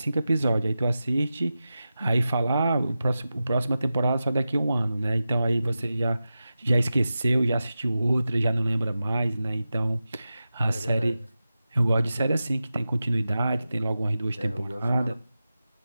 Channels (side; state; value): both; inverted; correlation -0.93